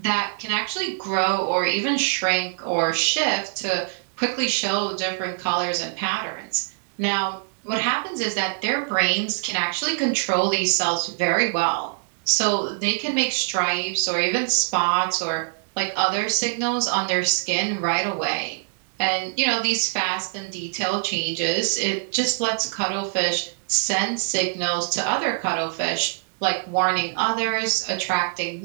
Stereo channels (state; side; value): silent; left; digital silence